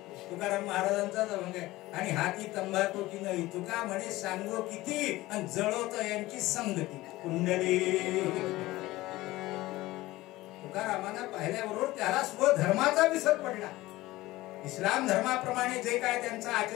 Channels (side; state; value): right; quieter; 18.2 dB